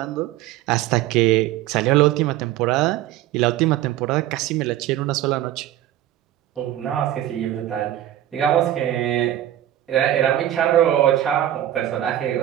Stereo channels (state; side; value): quieter; left; 12.9 dB